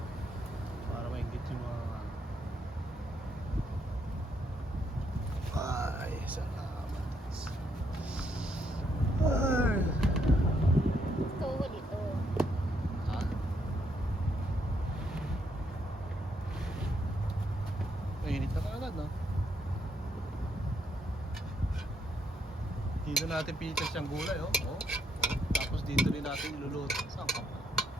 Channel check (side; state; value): both; normal; correlation 0.75